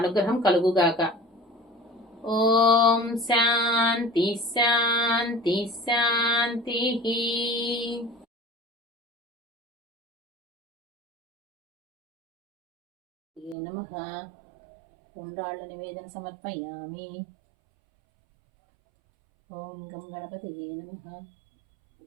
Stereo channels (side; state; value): left; drops out; at 13.6 s